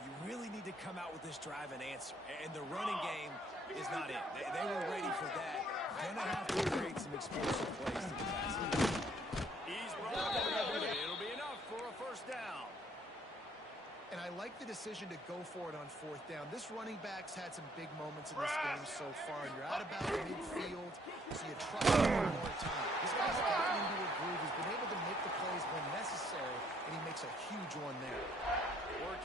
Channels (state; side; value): normal; both; correlation 0.65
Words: really need to come out with this drive and answer. And the running game is not it. They were ready for that. Gonna have to create some explosive plays to the pass. He's brought it. It'll be enough for a 1st down. And I like the decision to go for it on 4th down. This running back's had some big moments in this game so far, and you're out about midfield, so you trust him one more time. This guy's gotten into a groove. He's been able to make the plays when necessary, and he makes a huge one there.